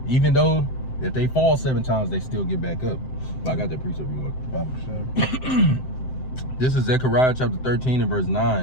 even though if they fall 7 times, they still get back up. I got that precept you want. This is Zechariah chapter 13 and verse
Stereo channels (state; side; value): late; right; 7.7 ms